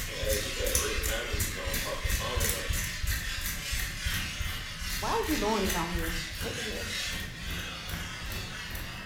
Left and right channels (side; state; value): both; identical; correlation 1.00